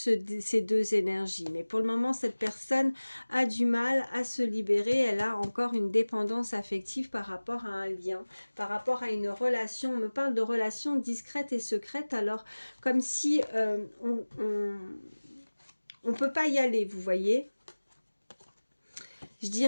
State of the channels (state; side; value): inverted; both; correlation -1.00